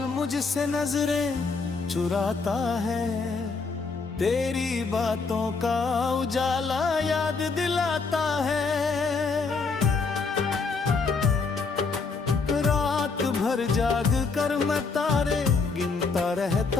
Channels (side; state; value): right; quieter; 4.5 dB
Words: मुझसे नजरें चुराता है, तेरी बातों का उजाला याद दिलाता है। रात भर जाग कर मैं तारे गिनता